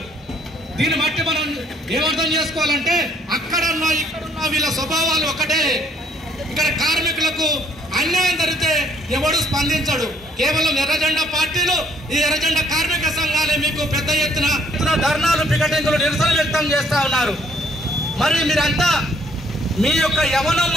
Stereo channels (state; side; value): normal; both; correlation 0.64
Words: దీన్ని బట్టి మనం ఏమర్థం చేసుకోవాలంటే అక్కడన్నా ఇక్కడున్నా వీళ్ళ స్వభావాలు ఒకటే. ఇక్కడ కార్మికులకు అన్యాయం జరిగితే ఎవడు స్పందించడు. కేవలం ఎర్రజెండా పార్టీలు, ఈ ఎర్రజెండా కార్మిక సంఘాలే మీకు పెద్ద ఎత్తున ధర్నాలు, పికెటింగ్లు, నిరసన వ్యక్తం చేస్తా ఉన్నారు. మరి మీరంతా మీ యొక్క యవనం